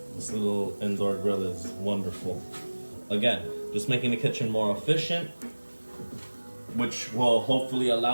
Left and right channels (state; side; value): inverted; both; correlation -1.00